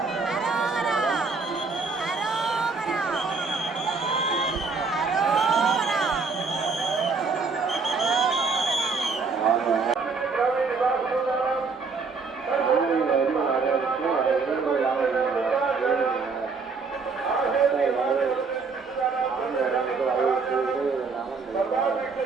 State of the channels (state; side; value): quieter; left; 4.6 dB